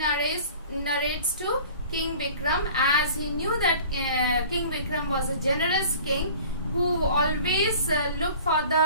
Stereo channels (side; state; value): both; inverted; correlation -0.45